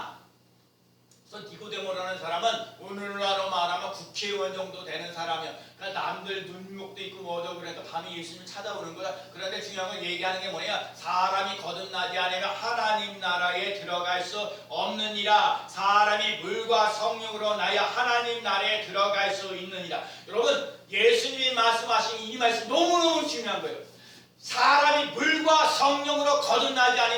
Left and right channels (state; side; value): identical; both; correlation 1.00